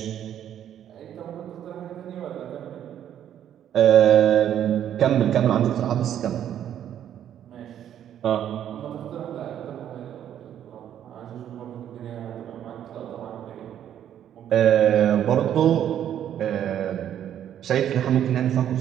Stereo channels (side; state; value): left; quieter; 10.3 dB